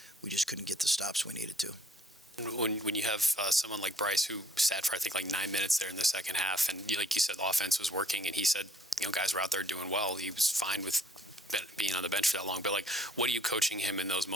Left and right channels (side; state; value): both; normal; correlation 0.60